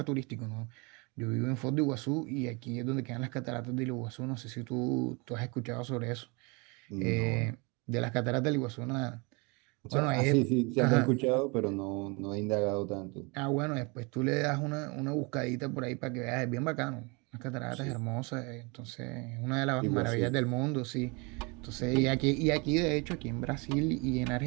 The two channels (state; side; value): quieter; left; 29.5 dB